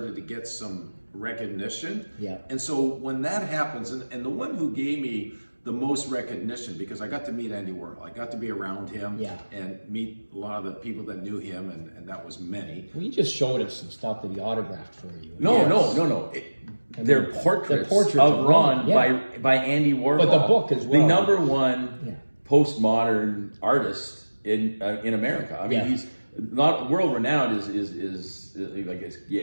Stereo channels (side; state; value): both; inverted; correlation -1.00